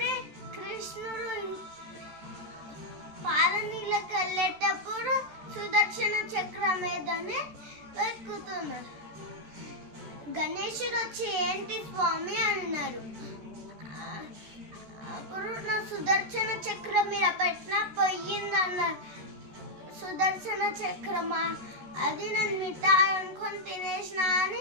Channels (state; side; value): late; left; 13 ms